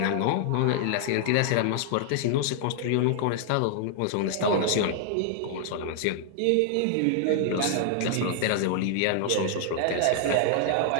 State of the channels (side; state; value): both; different; correlation -0.01